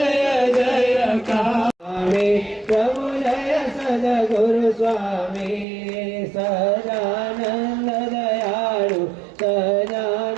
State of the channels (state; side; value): drops out; left; at 5.7 s